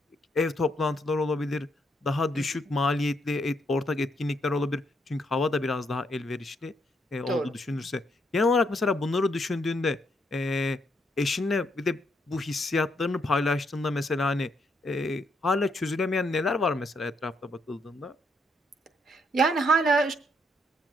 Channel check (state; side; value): normal; both; correlation 0.75